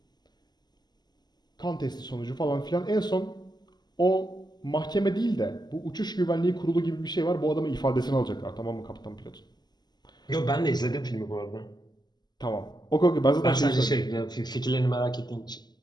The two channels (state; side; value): late; right; 0.20 ms